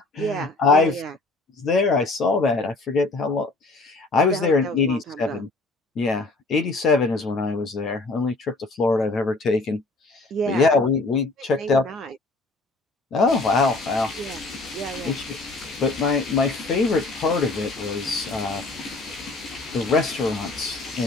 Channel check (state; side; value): quieter; right; 3.2 dB